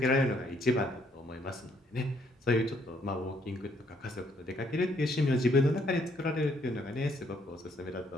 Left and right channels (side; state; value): both; normal; correlation 0.68